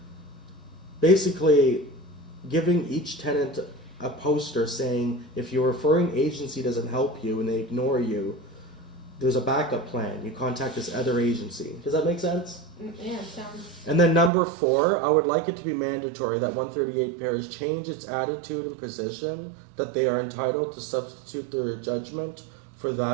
basically giving each tenant a poster saying, if your referring agency doesn't help you and they ignore you, there's a backup plan. You contact this other agency. Does that make sense? Yeah, sounds. And then number four, I would like it to be mandatory that 138 pairs change its attitude and position, that they are entitled to substitute their judgment for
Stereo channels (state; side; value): drops out; left; at 14.3 s